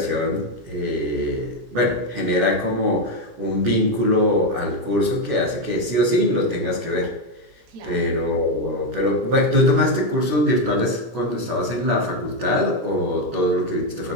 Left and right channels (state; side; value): late; left; 17 ms